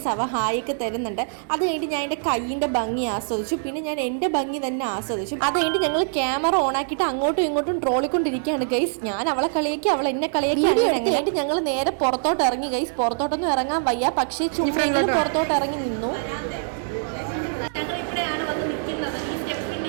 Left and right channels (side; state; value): left; silent; digital silence